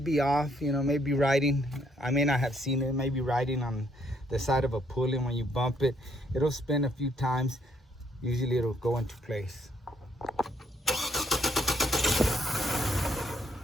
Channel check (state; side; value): normal; both; correlation 0.71